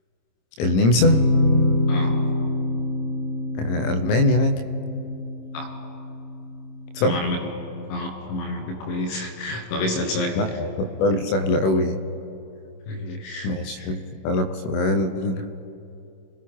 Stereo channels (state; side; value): late; right; 26 ms